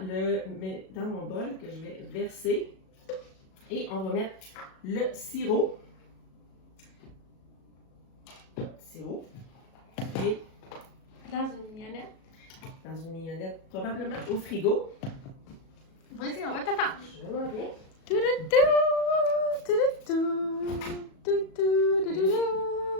dans mon bol que je vais verser. Et on va mettre le sirop. Et dans une mignonnette. Dans une mignonnette, probablement au frigo. Vas-y, on va t'attendre. Je m'en viens.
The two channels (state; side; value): late; right; 37 ms